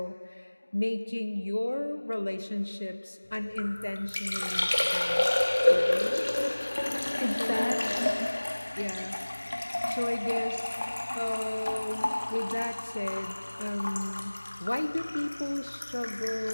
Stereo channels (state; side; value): inverted; both; correlation -1.00